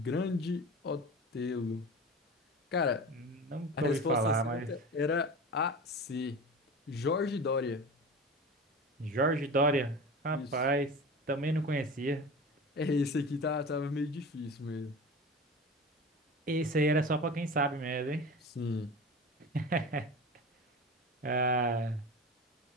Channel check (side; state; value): both; normal; correlation 0.32